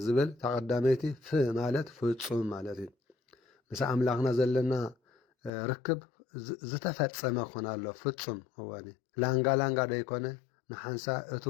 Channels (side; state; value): right; drops out; at 5.5 s